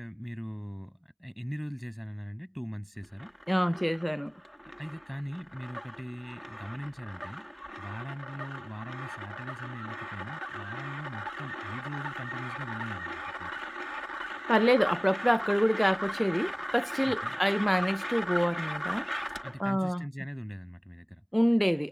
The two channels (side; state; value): both; identical; correlation 1.00